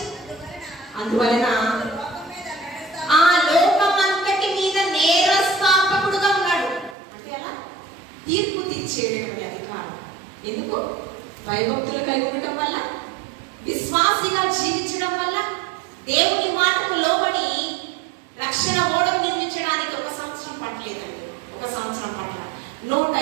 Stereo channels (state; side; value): drops out; left; at 7.0 s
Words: అందువలన ఆ లోకమంతటి మీద నేరస్థాపకుడుగా ఉన్నాడు. అంటే అలా తీర్పు తీర్చేటటువంటి అధికారం. ఎందుకు? భయభక్తులు కలిగి ఉండటం వల్ల, విశ్వాసిగా జీవించడం వల్ల, దేవుని మాటకు లోబడి రక్షణ ఓడను నిర్మించడానికి 1 సంవత్సరం పట్టలేదండి. 1 సంవత్సరం పట్ల